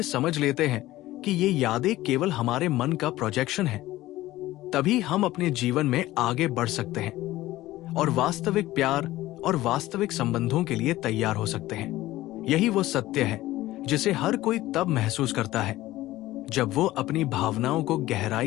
समझ लेते हैं कि ये यादें केवल हमारे मन का प्रोजेक्शन है, तभी हम अपने जीवन में आगे बढ़ सकते हैं और वास्तविक प्यार और वास्तविक संबंधों के लिए तैयार हो सकते हैं। यही वो सत्य है जिसे हर कोई तब महसूस करता है जब वो अपनी भावनाओं को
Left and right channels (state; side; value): quieter; right; 16.5 dB